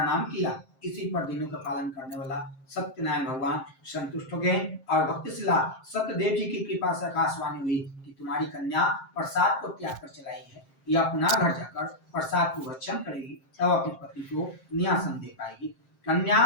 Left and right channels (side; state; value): right; late; 7.6 ms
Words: किया। इसी पर दिनों का पालन करने वाला सत्यनारायण भगवान संतुष्ट हो गए और भक्तिशिला सत्यदेव जी की कृपा से आकाशवाणी हुई कि तुम्हारी कन्या प्रसाद को त्याग कर चलाई है, या पुनः घर जाकर प्रसाद को भक्षण करेगी, तब अपने पति को न्यासन दे पाएगी। कन्या